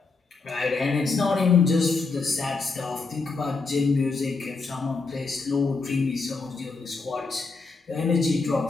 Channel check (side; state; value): right; quieter; 4.1 dB